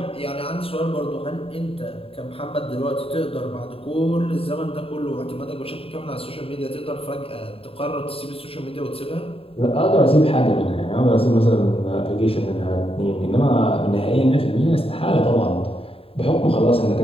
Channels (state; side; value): late; right; 0.27 ms